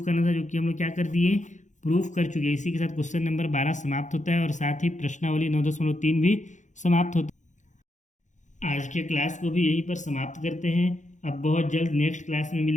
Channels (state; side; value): late; right; 0.35 ms